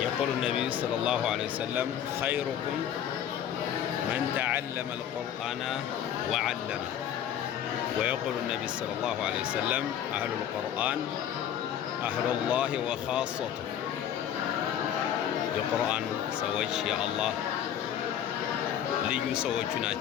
النبي صلى الله عليه وسلم: خيركم من تعلم القرآن وعلمه. ويقول النبي صلى الله عليه وسلم: أهل القرآن أهل الله وخاصته. የቁርአን ሰዎች የአላህ ልዩ ሰዎቹ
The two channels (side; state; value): right; quieter; 9.9 dB